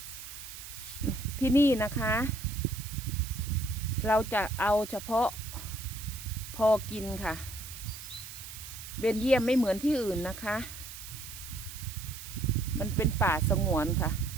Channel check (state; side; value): noise; right; hiss, 12 dB below the sound